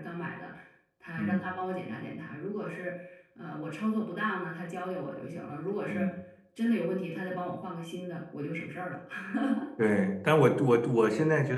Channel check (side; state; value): both; identical; correlation 1.00